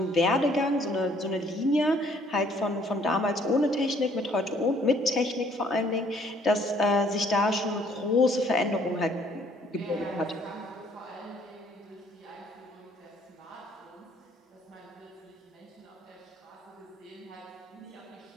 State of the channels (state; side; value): normal; both; correlation 0.62